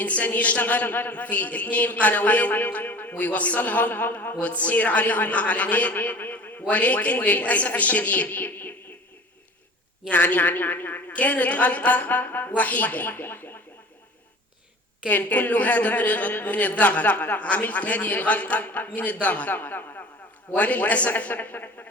يشتغل في 2 قنوات ويوصلهم وتصير عليهم إعلانات، ولكن للأسف الشديد يعني كانت غلطة وحيدة. كان كل هذا من الضغط. عملت هذه الغلطة من الضغط، وللأسف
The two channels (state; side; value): normal; both; correlation 0.42